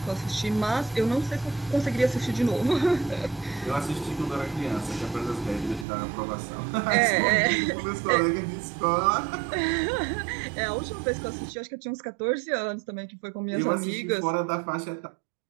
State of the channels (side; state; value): left; drops out; at 5.9 s